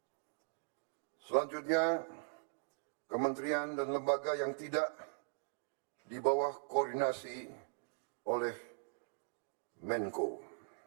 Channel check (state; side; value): silent; left; digital silence